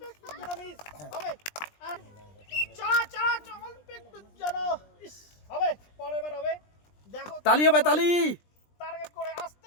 তালি হবে তালি। টার্গেট করে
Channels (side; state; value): right; late; 20 ms